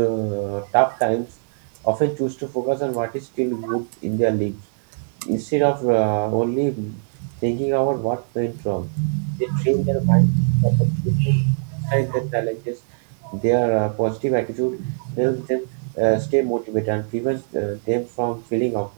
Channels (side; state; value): left; silent; digital silence